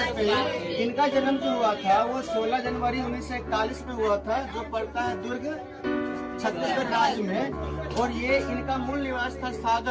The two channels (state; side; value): identical; both; correlation 1.00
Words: इनका जन्म जो हुआ था वो 16 जनवरी 1941 में हुआ था, जो पड़ता है दुर्ग छत्तीसगढ़ राज्य में। और ये इनका मूल निवास था